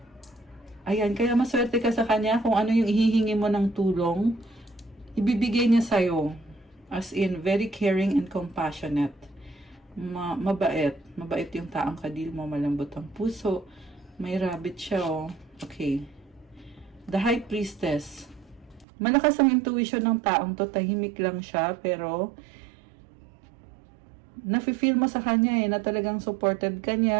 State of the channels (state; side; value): drops out; left; at 18.9 s